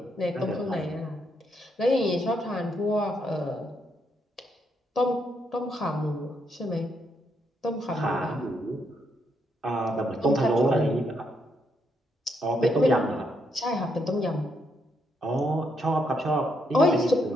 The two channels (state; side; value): normal; both; correlation 0.77